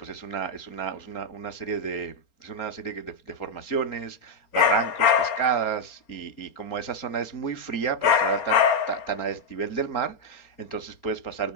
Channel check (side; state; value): right; late; 4.3 ms